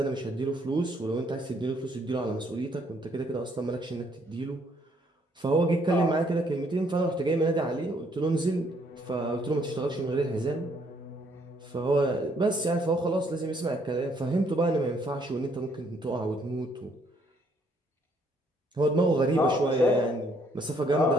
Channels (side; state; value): both; normal; correlation 0.68